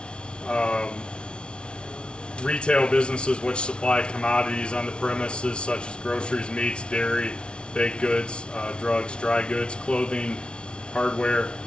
Retail businesses which supply commodities on the premises such as groceries, meats, dairy, baked goods, drugs, dry goods, clothing, hardware.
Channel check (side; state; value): right; late; 0.057 ms